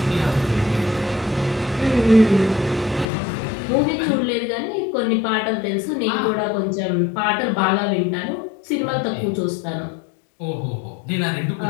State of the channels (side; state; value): right; drops out; at 3.1 s